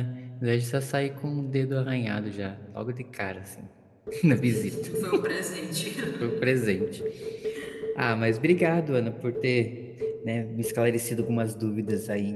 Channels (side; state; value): both; identical; correlation 1.00